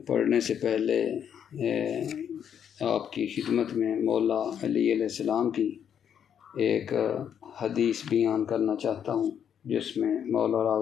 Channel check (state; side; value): quieter; right; 8.6 dB